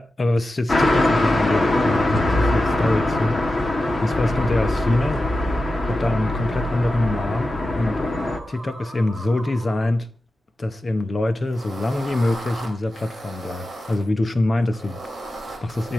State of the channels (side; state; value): both; normal; correlation 0.93